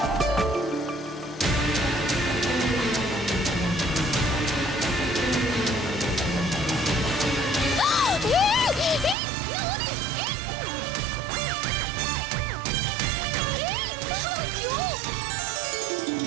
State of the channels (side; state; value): left; drops out; at 9.2 s